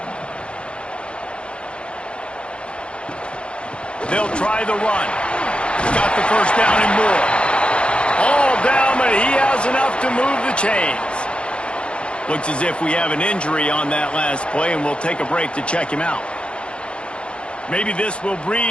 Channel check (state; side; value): late; right; 0.057 ms